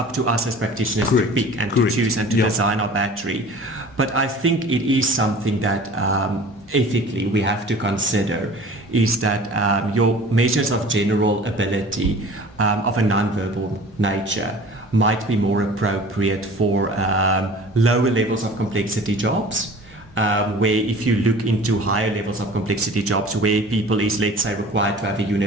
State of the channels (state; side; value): normal; both; correlation 0.43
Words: to us as practitioners to pick and to choose and to design our battery. But I think it is something that ethically we have to consider, is that your measures of general ability of a non-verbal nature might be more appropriate for lower levels of complexity jobs. Where if you look into higher levels of complexity jobs where people is, let's say, required to have a